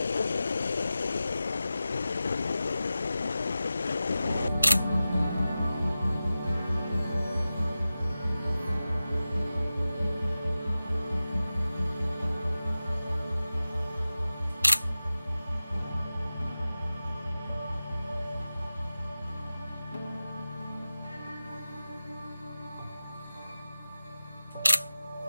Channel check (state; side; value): inverted; both; correlation -0.94